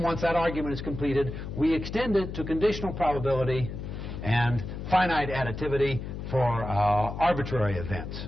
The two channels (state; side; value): noise; left; hum, 7 dB below the sound